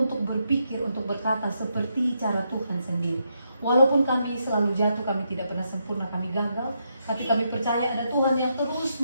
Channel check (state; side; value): inverted; both; correlation -0.80